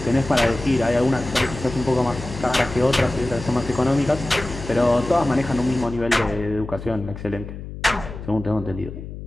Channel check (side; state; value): left; noise; hum, 11 dB below the sound